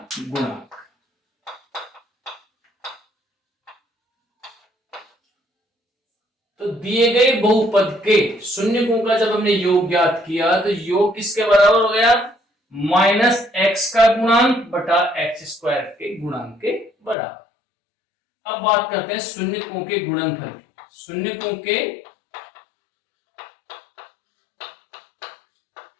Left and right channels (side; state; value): right; drops out; at 17.2 s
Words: गुणांक। तो दिए गए बहुपद के शून्यकों का जब हमने योग ज्ञात किया तो योग किसके बराबर हो गया, माइनस एक्स का गुणांक बटा एक्स स्क्वायर के गुणांक के बराबर। अब बात करते हैं शून्यकों के गुणनफल की। शून्यकों के